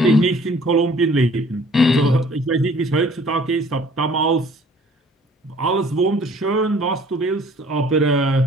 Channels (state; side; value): normal; both; correlation 0.54